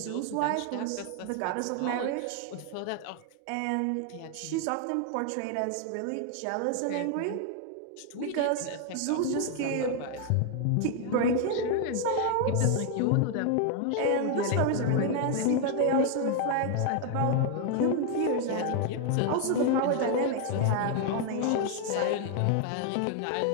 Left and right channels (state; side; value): different; both; correlation 0.01